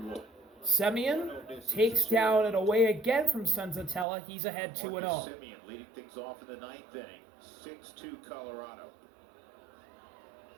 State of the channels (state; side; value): drops out; left; at 4.0 s